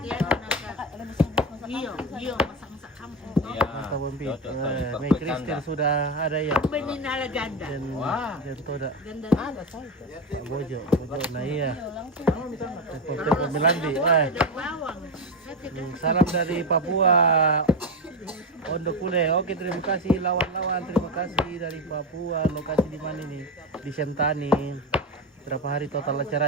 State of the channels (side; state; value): both; normal; correlation 0.15